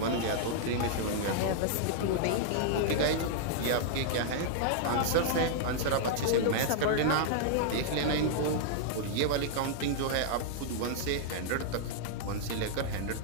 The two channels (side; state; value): both; different; correlation -0.01